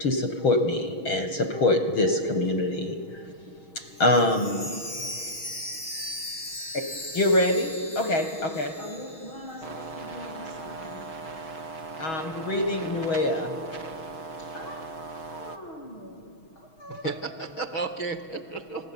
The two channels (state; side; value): late; right; 6.3 ms